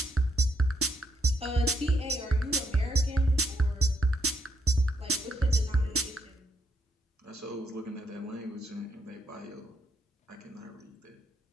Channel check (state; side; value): normal; both; correlation 0.77